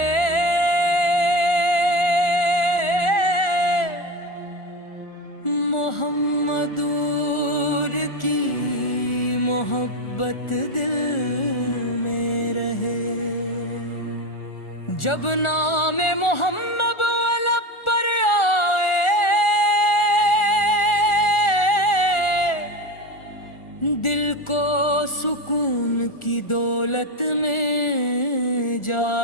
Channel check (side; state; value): right; late; 1.4 ms